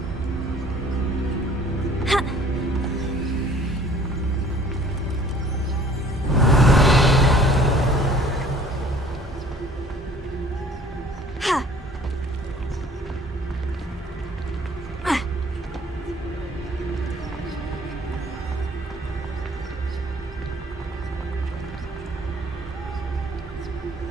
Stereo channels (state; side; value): normal; both; correlation 0.53